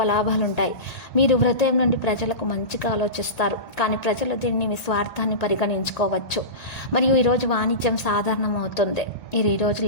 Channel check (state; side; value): late; right; 1.8 ms